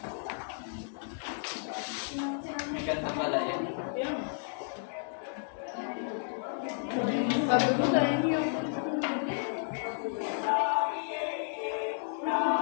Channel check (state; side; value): silent; right; digital silence